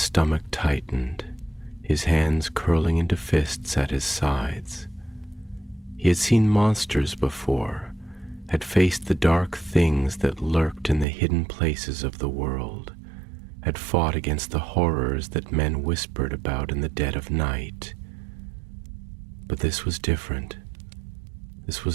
tightened, his hands curling into fists at his sides. He had seen monsters before, had faced the dark things that lurked in the hidden places of the world, had fought against the horrors that men whispered about in the dead of night. But this was different. This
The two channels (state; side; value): drops out; left; at 11.1 s